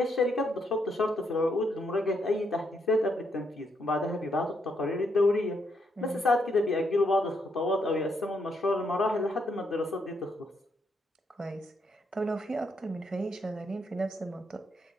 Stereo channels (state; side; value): normal; both; correlation 0.76